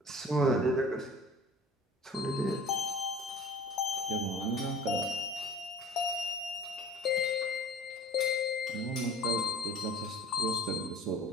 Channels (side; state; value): both; normal; correlation 0.44